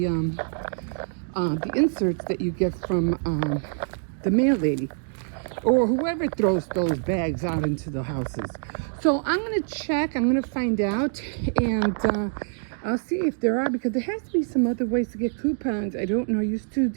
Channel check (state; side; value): silent; left; digital silence